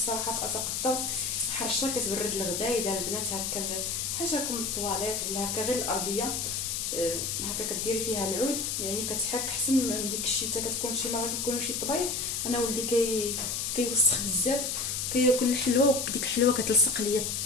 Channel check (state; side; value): noise; left; hiss, 1 dB below the sound